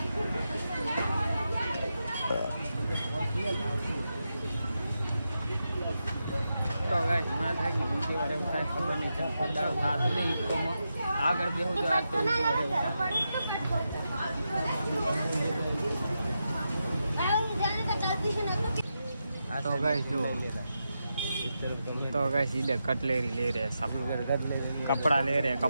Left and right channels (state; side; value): inverted; both; correlation -0.87